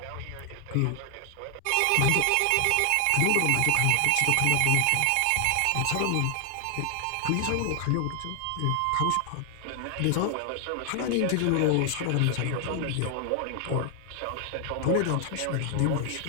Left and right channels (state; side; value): different; both; correlation 0.00